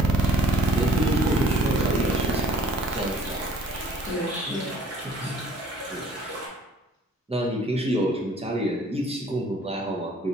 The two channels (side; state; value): both; normal; correlation 0.55